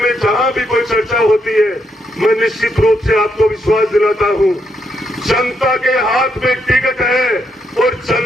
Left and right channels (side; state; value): both; normal; correlation 0.78